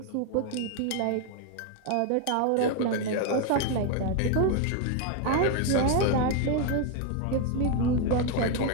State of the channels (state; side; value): different; both; correlation 0.01